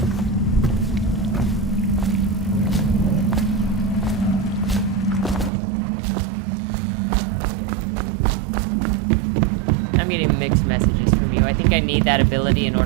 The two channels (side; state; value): left; drops out; at 5.5 s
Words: I'm getting mixed messages from you. I think I need that ability in